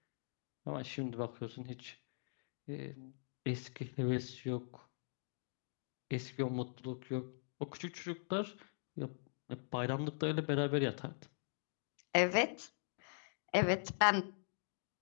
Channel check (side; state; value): right; silent; digital silence